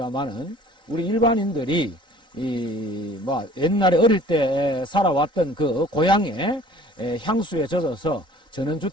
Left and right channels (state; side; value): late; left; 3.8 ms